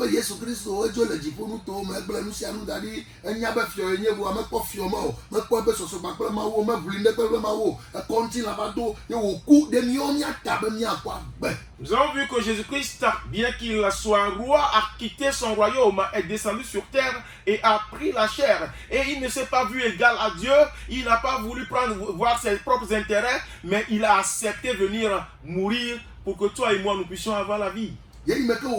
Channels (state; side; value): identical; both; correlation 1.00